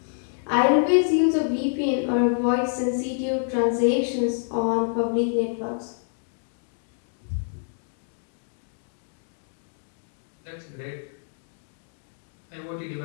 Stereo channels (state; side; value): silent; right; 60 dB below the other